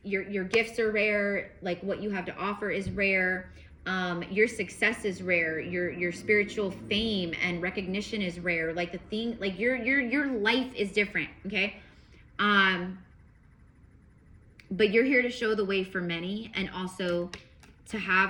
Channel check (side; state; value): both; identical; correlation 1.00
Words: your gifts are rare, like what you have to offer is rare, your success is rare, your spiritual fame and recognition is rare, like the thing, like your life is different. Okay, but you're here to show the way for many, and also to